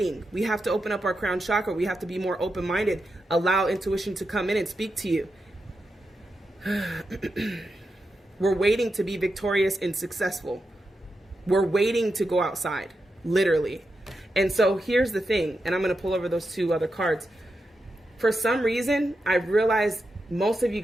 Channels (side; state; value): both; normal; correlation 0.87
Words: We have to open up our crown chakra. We have to be more open-minded. Allow intuition to come in and speak to you. We're waiting to be victorious and successful. We're waiting to go outside, literally. And so here's the thing, and I'm going to pull over those 2 other cards. For some reason, I realize most of you